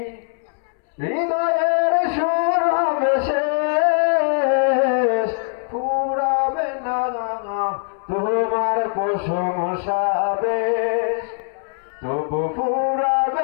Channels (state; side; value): silent; right; 65 dB below the other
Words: হৃদয়ের সুর হবে শেষ ফুরাবে না তোমার প্রশংসা বেশ তবু